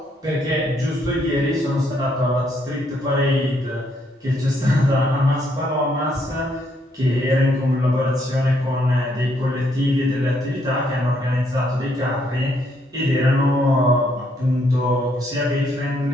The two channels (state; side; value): normal; both; correlation 0.72